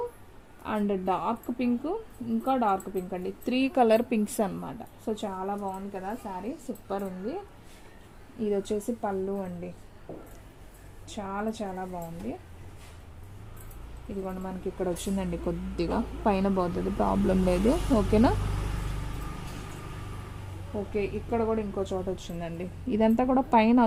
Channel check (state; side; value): identical; both; correlation 1.00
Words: and dark pink, ఇంకా డార్క్ పింక్ అండి. 3 కలర్ పింక్స్ అనమాట. సో చాలా బాగుంది కదా శారీ, సూపర్ ఉంది. ఇది వచ్చేసి పళ్ళు అండి, చాలా చాలా బాగుంది. ఇదిగోండి మనకి ఇక్కడ వచ్చిందండి, కొద్దిగా పైన పోతుంది, ప్రాబ్లం లేదు. ఓకేనా? ఓకే, ఇక్కడ కూడా ఇంకో చోట వచ్చిందండి. ఇదంతా కూడా పైన